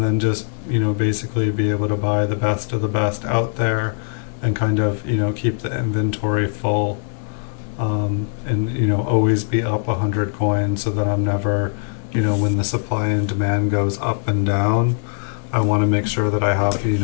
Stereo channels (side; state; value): right; silent; digital silence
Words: then just basically be able to buy the best of the best out there, and kind of keep the inventory full. And always be up 100 coins so that I'm never, when the supply and demand goes up and down, I want to make sure that I have,